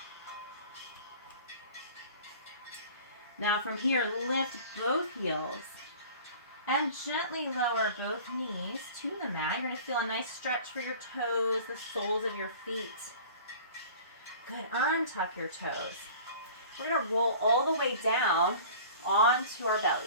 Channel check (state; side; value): inverted; both; correlation -0.43